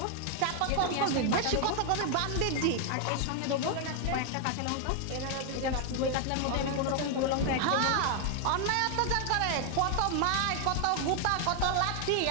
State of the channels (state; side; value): different; both; correlation 0.00